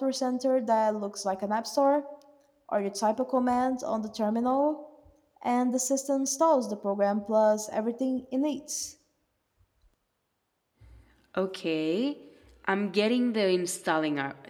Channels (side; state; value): both; identical; correlation 1.00